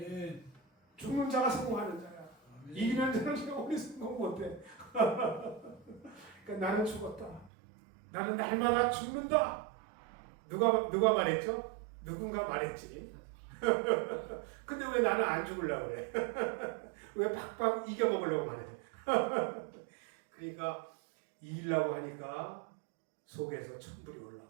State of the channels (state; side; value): drops out; left; at 7.5 s